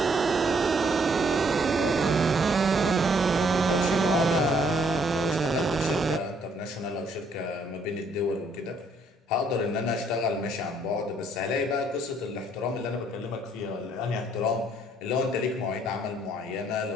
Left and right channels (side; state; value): both; normal; correlation 0.66